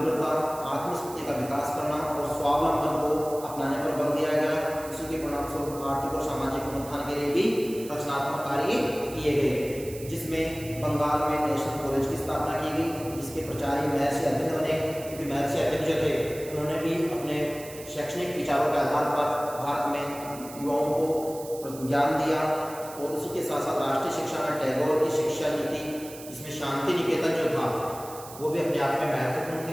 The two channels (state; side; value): noise; right; hiss, 15 dB below the sound